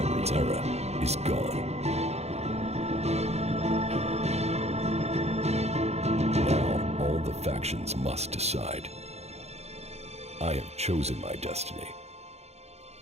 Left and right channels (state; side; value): late; left; 0.31 ms